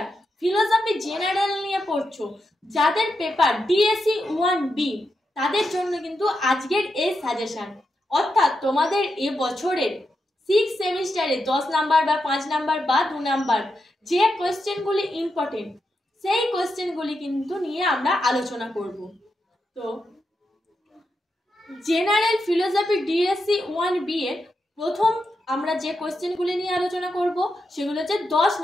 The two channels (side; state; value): both; normal; correlation 0.86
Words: ফিলোসফি জেনারেল নিয়ে পড়ছো, যাদের পেপার ডিএসসি 1B, তাদের জন্য কিন্তু আজকের এই সাজেশন। অর্থাৎ তোমাদের এ বছরের 6th সেমিস্টারে 10 নাম্বার বা 5 নাম্বার বা 2 নাম্বার যে কোয়েশ্চেনগুলি ইম্পর্টেন্ট, সেই কোয়েশ্চেনগুলি কিন্তু নিয়ে আমরা আলোচনা করব। তো জেনারেল ফিলোসফি ডিএসসি 1B এর প্রথম আমরা যে কোয়েশ্চেনগুলি নিয়ে আলোচনা করব সেগুলো হচ্ছে 10